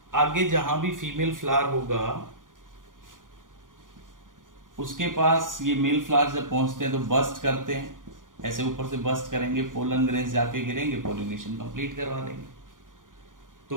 आगे जहां भी फीमेल फ्लावर होगा उसके पास ये मेल फ्लावर्स जब पहुंचते हैं तो बस्ट करते हैं, ऐसे ऊपर से बस्ट करेंगे, पोलन ग्रेन्स जाके गिरेंगे, पॉलिनेशन कंप्लीट करवा देंगे। तो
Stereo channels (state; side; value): late; left; 0.89 ms